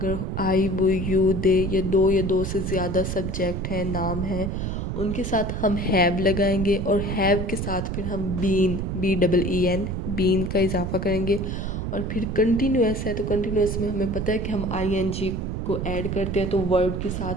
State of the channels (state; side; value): noise; right; rumble, 3 dB below the sound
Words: आई, वो, यू, दे या दो से ज़्यादा सब्जेक्ट हैं, नाम हैं, उनके साथ हम हैव लगाएंगे और हैव के साथ फिर हम BEEN बीन का इजाफा करेंगे। और फिर कंटिन्यूस है तो कंटिन्यूस में हमें पता है कि हम ING को ऐड करते हैं, तो वर्ब के